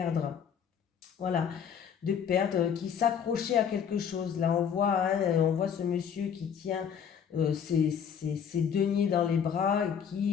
Voilà, de perdre, qui s'accrochait à quelque chose. Là, on voit ce monsieur qui tient ses deniers dans les bras et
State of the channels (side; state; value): right; quieter; 7.7 dB